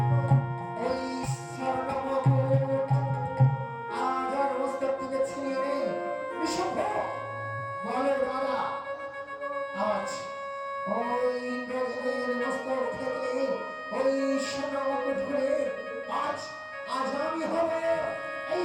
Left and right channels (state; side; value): identical; both; correlation 1.00